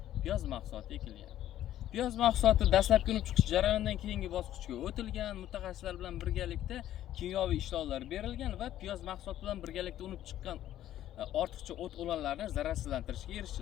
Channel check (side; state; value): right; quieter; 12.5 dB